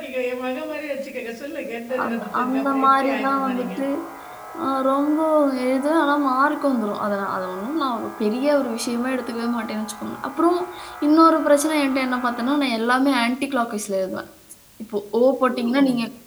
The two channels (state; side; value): identical; both; correlation 1.00